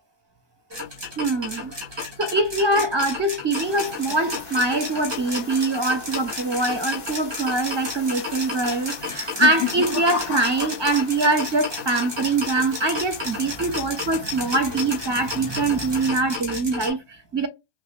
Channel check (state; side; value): late; left; 1.2 ms